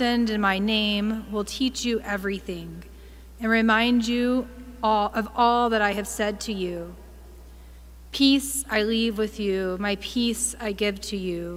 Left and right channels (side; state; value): both; identical; correlation 1.00